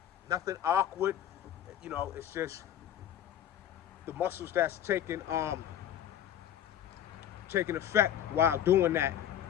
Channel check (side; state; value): right; quieter; 10.5 dB